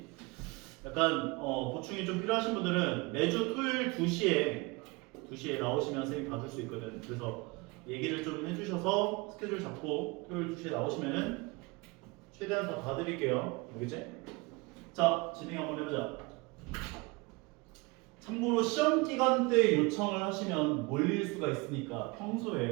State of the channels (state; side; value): quieter; left; 25.8 dB